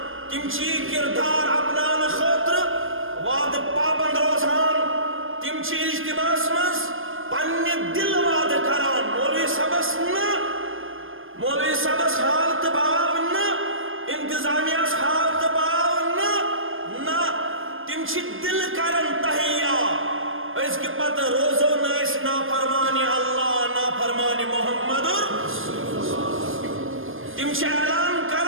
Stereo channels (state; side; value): late; left; 0.59 ms